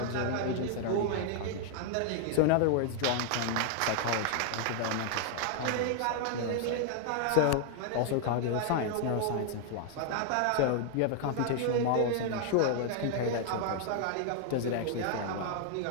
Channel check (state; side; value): different; both; correlation 0.00